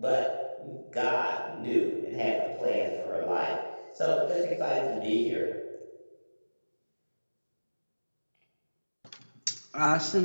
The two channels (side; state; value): both; inverted; correlation -1.00